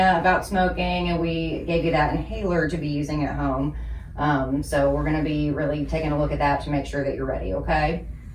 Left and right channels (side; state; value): both; identical; correlation 1.00